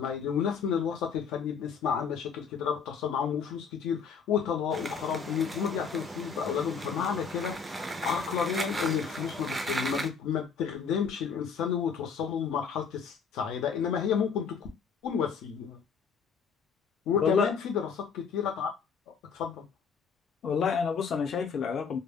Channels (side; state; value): right; quieter; 6.1 dB